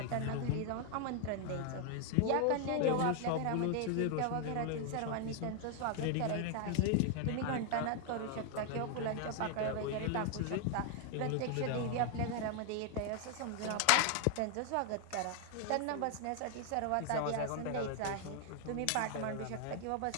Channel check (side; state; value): both; different; correlation 0.00